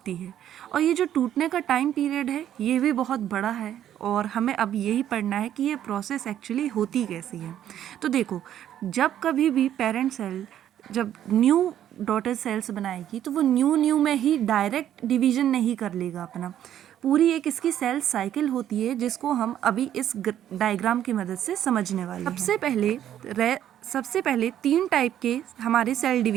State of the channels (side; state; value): left; quieter; 10.9 dB